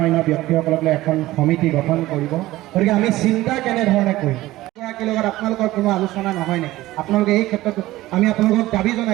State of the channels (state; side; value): quieter; left; 17.0 dB